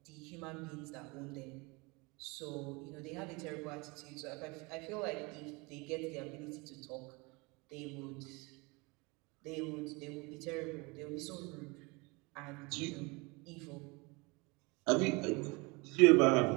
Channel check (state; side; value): quieter; left; 27.0 dB